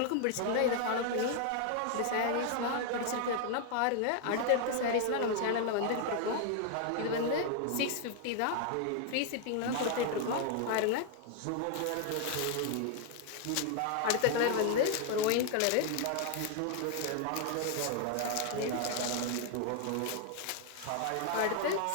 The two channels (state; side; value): different; both; correlation 0.00